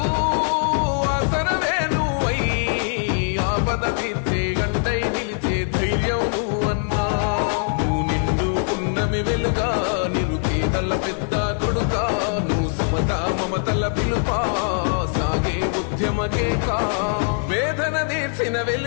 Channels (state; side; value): silent; right; 62 dB below the other